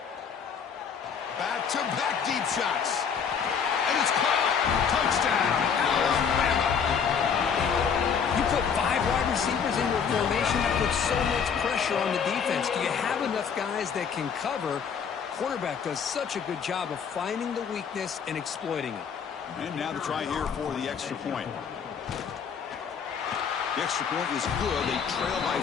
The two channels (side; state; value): right; quieter; 6.8 dB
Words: Back-to-back deep shots. And it's caught. Touchdown, Alabama. You put 5 wide receivers in your formation, that puts so much pressure on the defense. Do you have enough guys that can cover? Quarterback does such a good job of finding the weakness and exploiting it. And now the try here for the extra point. The extra point is good. They trail by